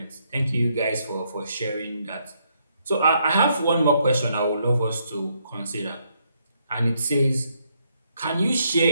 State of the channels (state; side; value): inverted; both; correlation -0.74